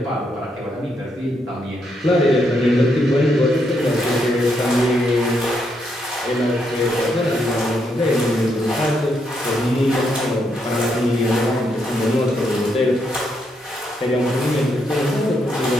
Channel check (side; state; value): both; normal; correlation 0.78